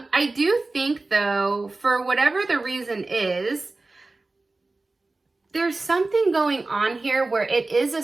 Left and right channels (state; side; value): quieter; left; 3.3 dB